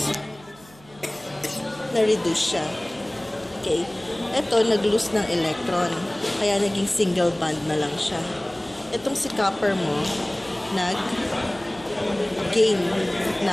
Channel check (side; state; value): right; noise; hum, 25 dB below the sound